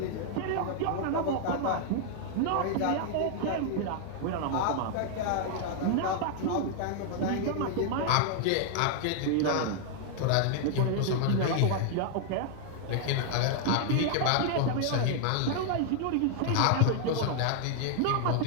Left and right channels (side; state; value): both; different; correlation 0.00